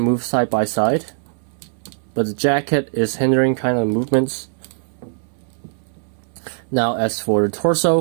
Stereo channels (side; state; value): left; silent; 65 dB below the other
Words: move side by side, but the jacket is hindering kind of movements. Now as for the